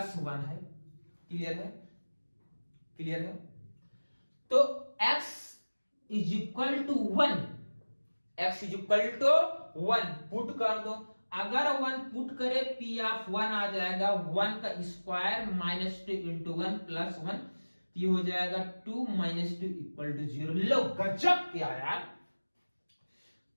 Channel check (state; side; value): inverted; both; correlation -1.00